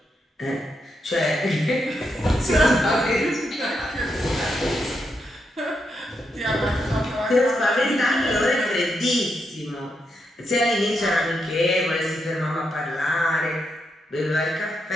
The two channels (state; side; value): normal; both; correlation 0.82